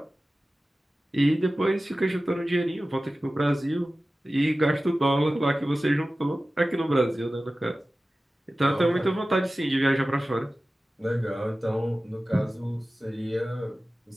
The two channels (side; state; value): both; normal; correlation 0.96